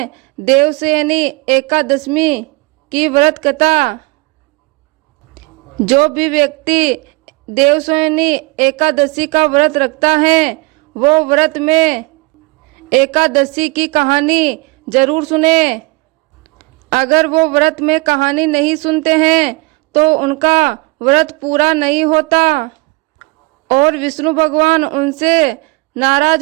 देवशयनी एकादशमी की व्रत कथा। जो भी व्यक्ति देवशयनी एकादशी का व्रत रखता है वो व्रत में एकादशी की कहानी जरूर सुने। अगर वो व्रत में कहानी नहीं सुनते हैं तो उनका व्रत पूरा नहीं होता और विष्णु भगवान उनसे नाराज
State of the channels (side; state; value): left; quieter; 26.5 dB